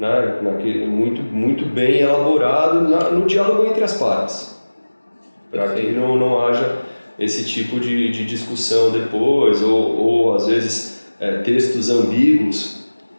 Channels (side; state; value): both; inverted; correlation -1.00